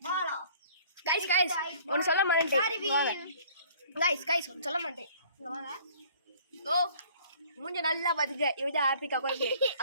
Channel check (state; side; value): inverted; both; correlation -0.54